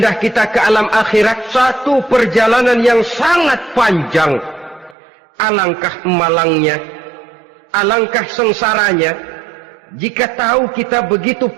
kita ke alam akhirat. Satu perjalanan yang sangat panjang. Alangkah malangnya, alangkah sengsaranya jika tahu kita begitu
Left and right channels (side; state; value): left; drops out; at 5.0 s